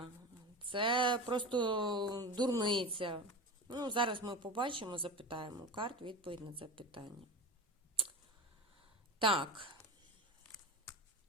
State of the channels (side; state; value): both; normal; correlation 0.27